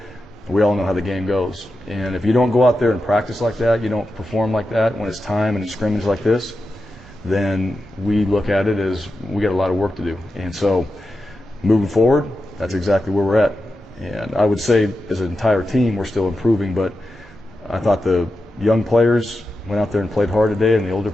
We all know how the game goes. And if you don't go out there and practice like that, you don't perform like that when it's time and it's scrimmage like this, then we look at it as we got a lot of work to do. And so moving forward, that's exactly where we're at. And I would say as an entire team, we're still improving, but I thought the young players went out there and played hard today, and the older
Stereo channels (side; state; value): both; normal; correlation 0.90